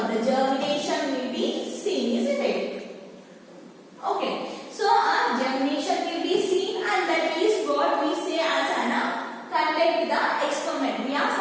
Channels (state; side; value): identical; both; correlation 1.00